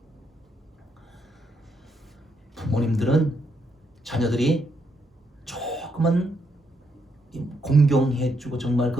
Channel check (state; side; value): normal; both; correlation 0.77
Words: 부모님들은 자녀들이 조금은 공경해주고 정말